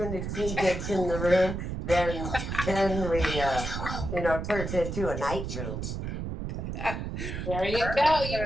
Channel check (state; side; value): noise; right; rumble, 5 dB below the sound